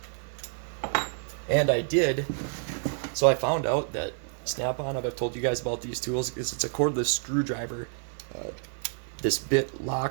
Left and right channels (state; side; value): silent; left; 59 dB below the other